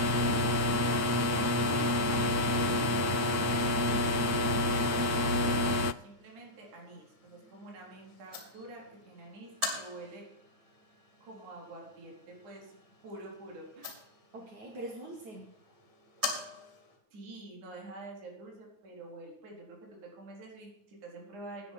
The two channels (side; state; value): left; late; 9.1 ms